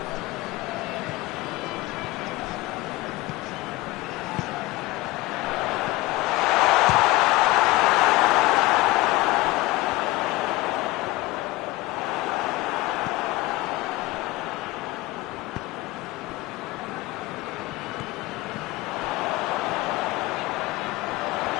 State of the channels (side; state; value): right; quieter; 19.9 dB